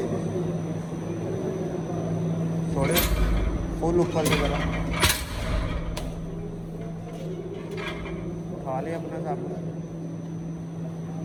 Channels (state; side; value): identical; both; correlation 1.00